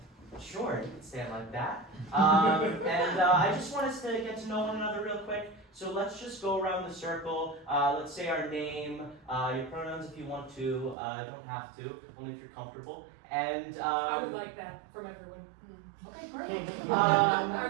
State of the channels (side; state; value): left; drops out; at 11.0 s